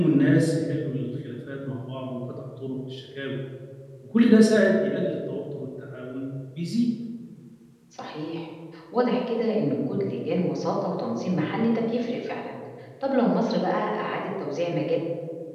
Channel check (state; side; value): identical; both; correlation 1.00